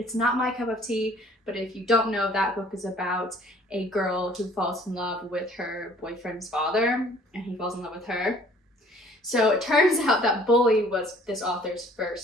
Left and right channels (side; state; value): both; normal; correlation 0.56